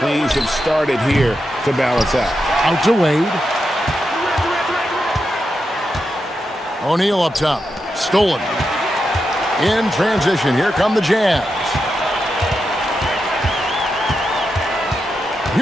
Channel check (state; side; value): normal; both; correlation 0.87